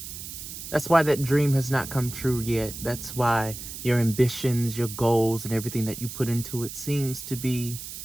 That's why that dream has not come true yet. That's why your ambitions, your goals, and everything that you put into it seems to be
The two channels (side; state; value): right; noise; hiss, 10 dB below the sound